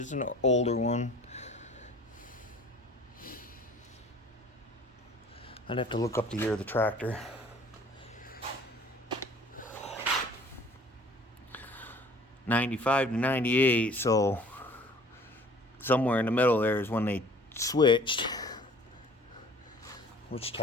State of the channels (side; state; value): both; normal; correlation 0.51